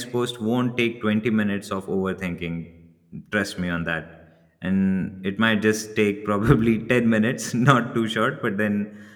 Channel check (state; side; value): identical; both; correlation 1.00